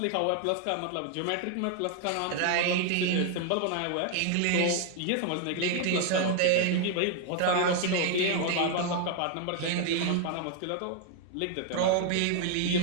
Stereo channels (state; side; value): different; both; correlation 0.00